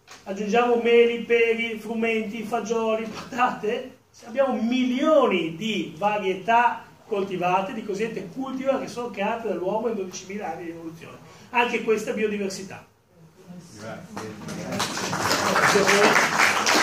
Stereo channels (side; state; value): both; identical; correlation 1.00